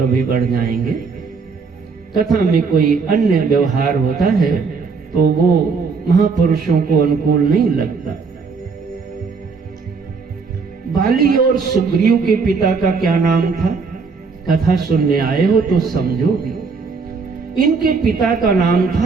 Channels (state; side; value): quieter; left; 4.9 dB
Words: अभी बढ़ जाएंगे। कथा में कोई अन्य व्यवहार होता है तो वो महापुरुषों को अनुकूल नहीं लगता। बाली और सुग्रीव के पिता का क्या नाम था? कथा सुनने आए हो तो समझोगे। इनके पिता का नाम